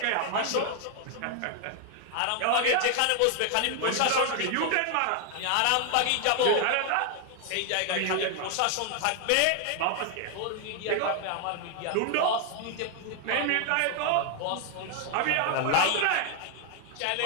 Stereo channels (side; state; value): both; different; correlation 0.00